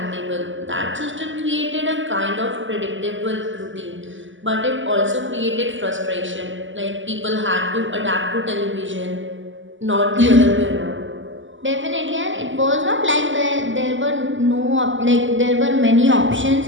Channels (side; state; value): left; late; 0.55 ms